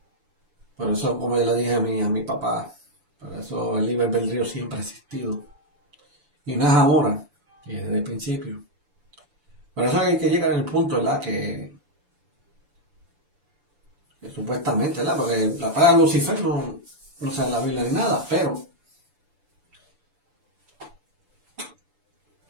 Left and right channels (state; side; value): late; left; 7.0 ms